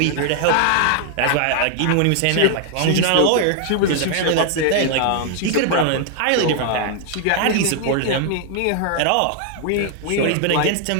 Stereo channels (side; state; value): both; different; correlation 0.00